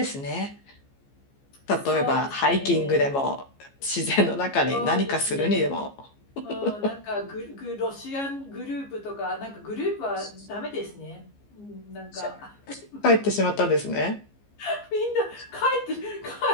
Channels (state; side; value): late; right; 15 ms